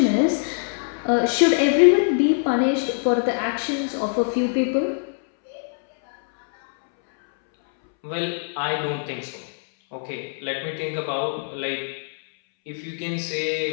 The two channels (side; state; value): right; silent; 63 dB below the other